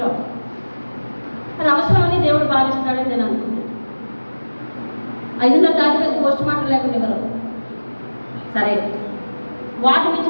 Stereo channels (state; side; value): inverted; both; correlation -1.00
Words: అది అవసరమని దేవుడు భావిస్తున్నాడని నేను అనుకుంటున్నాను. 5:30 దాటిపోయింది, పోస్ట్ మార్టం లేకుండా ఇవ్వరు. సరే, వాటి నుంచి